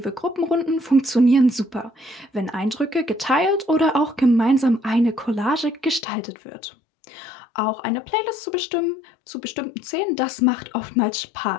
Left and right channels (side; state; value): right; drops out; at 6.1 s